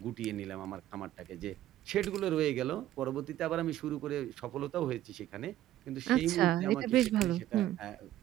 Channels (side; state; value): left; quieter; 13.5 dB